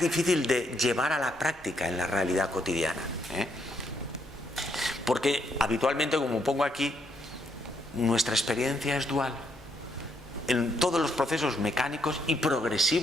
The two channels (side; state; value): both; normal; correlation 0.75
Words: de llevar a la práctica en la realidad cotidiana. Porque habitualmente, como pongo aquí, nuestra experiencia es dual. En todos los procesos mecánicos y